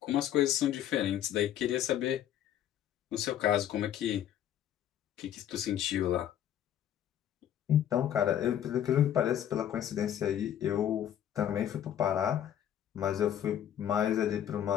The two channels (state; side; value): quieter; right; 10.6 dB